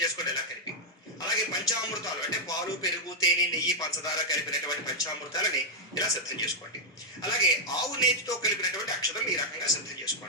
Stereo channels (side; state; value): both; normal; correlation 0.00